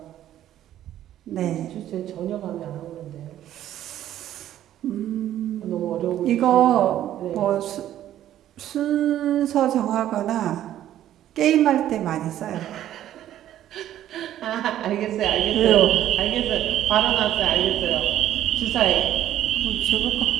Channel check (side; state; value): left; quieter; 12.1 dB